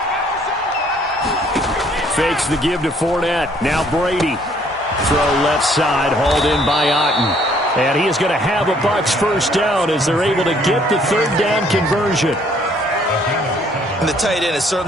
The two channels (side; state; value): both; normal; correlation 0.62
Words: Fakes the give to Fournette. Now Brady. Throw left side, hauled in by Otten. And he is going to have a Bucs 1st down as they're able to get the 3rd down conversion. And the tight end is